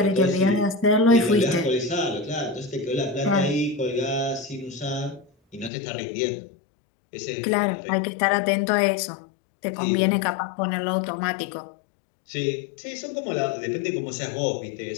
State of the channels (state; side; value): drops out; right; at 5.7 s